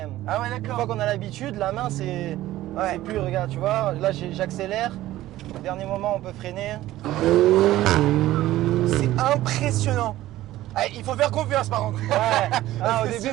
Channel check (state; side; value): quieter; left; 15.3 dB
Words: Ah ouais, Une fois d'accord. qu'on a l'habitude, la main c'est Ouais. plus, regarde, tu vois, là j'accélère. Au dernier moment on peut freiner. C'est impressionnant. Ah, il faut faire confiance par contre. Ouais. Ah, Parce que